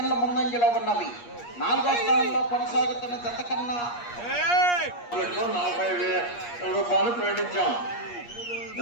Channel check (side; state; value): right; late; 8.5 ms